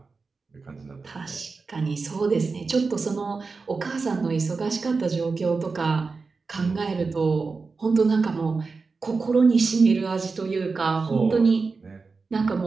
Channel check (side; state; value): left; quieter; 4.4 dB